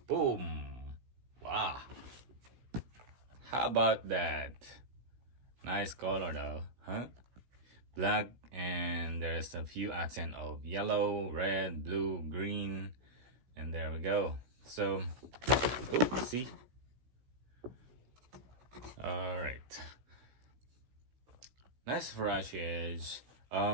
Boom! Wow, how about that? Nice color though, huh? Black, and there's a few accent of yellow, red, blue, green, and there we go. So see, all right, nice Huarache Edge. A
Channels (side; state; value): left; late; 16 ms